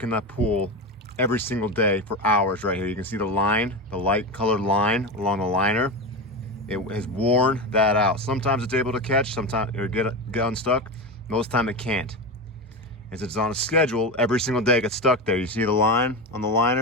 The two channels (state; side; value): normal; both; correlation 0.19